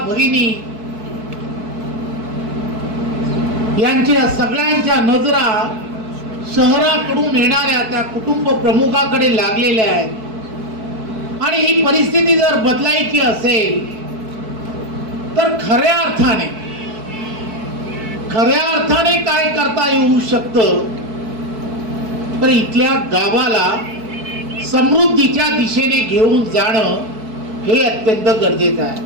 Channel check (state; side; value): late; left; 4.6 ms